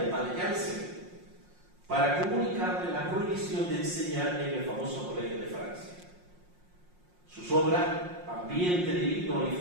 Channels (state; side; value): late; left; 5.6 ms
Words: el padre Janssen, para comunicarle la prohibición de enseñar en el famoso Colegio de Francia. Sus obras, Ambiente divino y